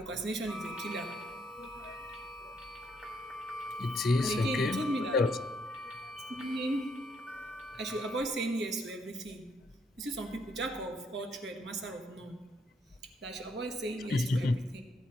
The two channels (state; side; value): normal; both; correlation 0.72